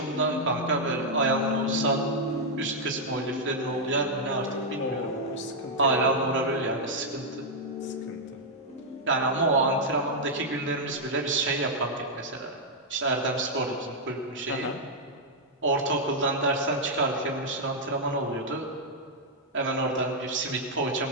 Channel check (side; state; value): both; normal; correlation -0.04